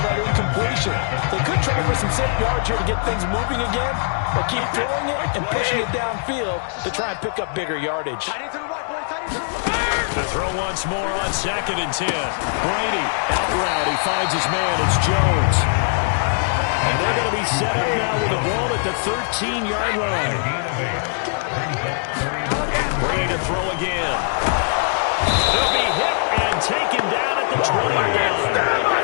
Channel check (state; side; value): silent; right; digital silence